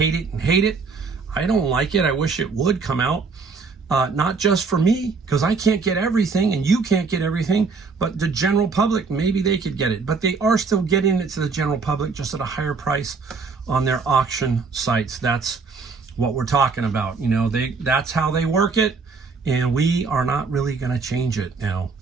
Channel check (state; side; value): quieter; left; 4.7 dB